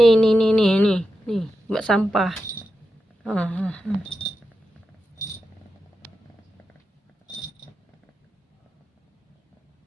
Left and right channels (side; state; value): both; normal; correlation 0.89